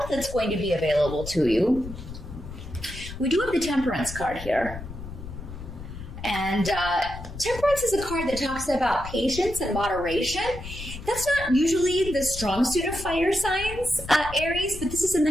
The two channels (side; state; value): left; noise; rumble, 11 dB below the sound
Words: that's going to be available to you. We do have the Temperance card here. And Temperance is a card that talks about patience and moderation. That's not usually the strong suit of fire signs, Aries, but this is in the